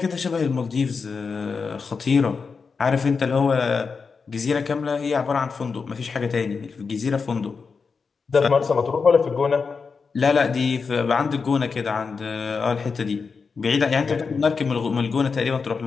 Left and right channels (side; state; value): right; quieter; 5.1 dB